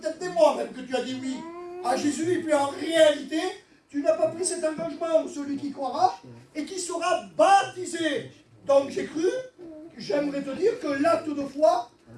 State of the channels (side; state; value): both; identical; correlation 1.00